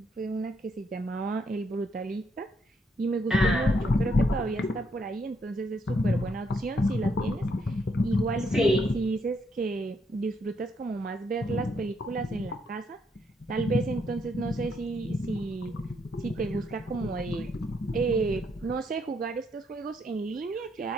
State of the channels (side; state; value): both; normal; correlation 0.74